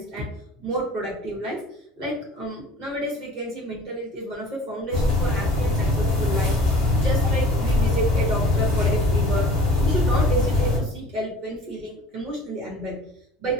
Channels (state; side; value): normal; both; correlation 0.46